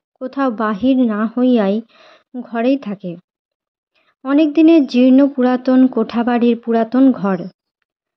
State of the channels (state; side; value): identical; both; correlation 1.00